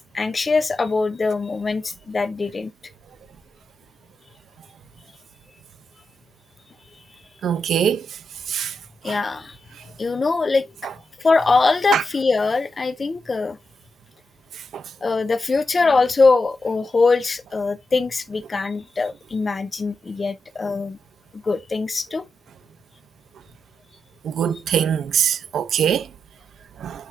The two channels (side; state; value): both; normal; correlation 0.87